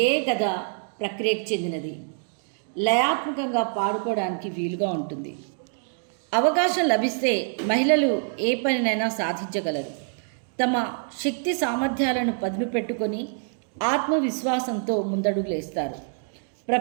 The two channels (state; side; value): silent; left; digital silence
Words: కథ ప్రక్రియకు చెందినది. లయాత్మకంగా పాడుకోవడానికి వీలుగా ఉంటుంది. అవకాశం లభిస్తే మహిళలు ఏ పనినైనా సాధించగలరు. తమ శక్తి సామర్థ్యాలను పదును పెట్టుకొని ఆత్మవిశ్వాసంతో ముందడుగులేస్తారు.